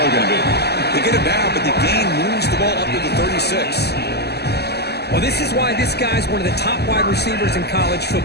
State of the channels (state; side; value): late; right; 0.47 ms